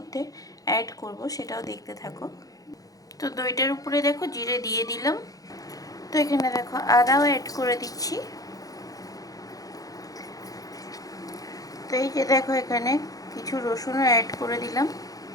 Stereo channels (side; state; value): right; late; 0.17 ms